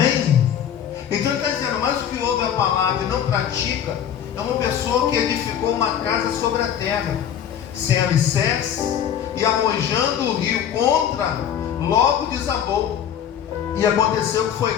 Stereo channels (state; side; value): quieter; right; 9.3 dB